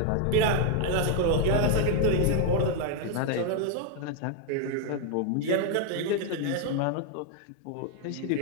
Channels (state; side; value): different; both; correlation 0.00